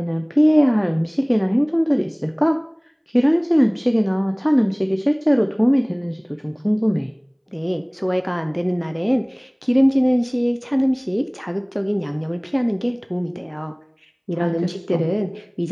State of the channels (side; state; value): both; identical; correlation 1.00